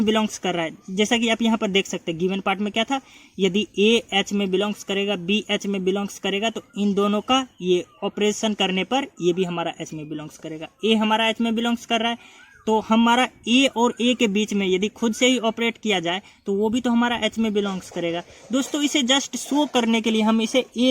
बिलोंग्स कर रहा है। जैसा कि आप यहाँ पर देख सकते हैं गिवन पार्ट में क्या था, यदि A H में बिलोंग्स करेगा, B H में बिलोंग्स करेगा, तो इन दोनों का ये ऑपरेशन करने पर ये भी हमारा H में बिलोंग्स करेगा। A हमारा H में बिलोंग्स कर रहा है, तो हमारा A और A के बीच में यदि खुद से ही ऑपरेट किया जाए तो वो भी तो हमारा H में बिलोंग्स करेगा। दोस्तों इसे जस्ट शो करने के लिए हम इसे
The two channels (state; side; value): identical; both; correlation 1.00